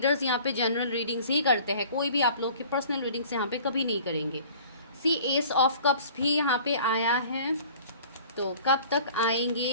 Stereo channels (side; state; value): both; inverted; correlation -0.48